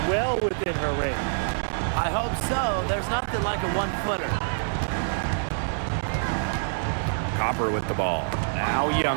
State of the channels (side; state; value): left; silent; digital silence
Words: well within her range. I hope so. There's nothing like a one-footer. Copper with the ball. Now